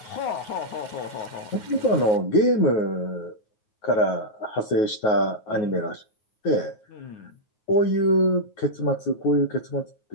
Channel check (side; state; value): right; late; 9.4 ms